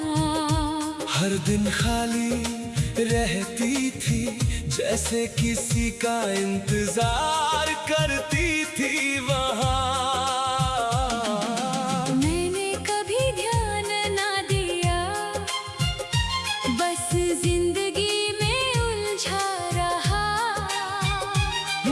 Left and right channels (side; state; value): both; identical; correlation 1.00